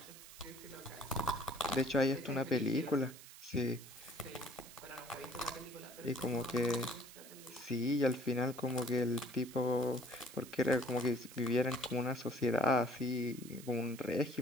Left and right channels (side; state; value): right; noise; hiss, 16 dB below the sound